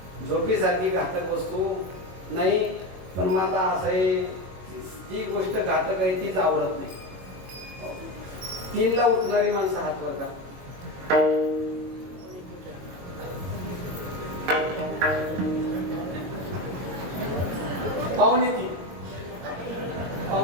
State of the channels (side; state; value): left; late; 22 ms